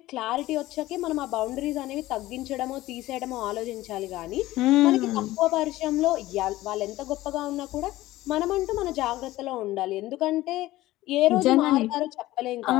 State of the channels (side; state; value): right; quieter; 16.7 dB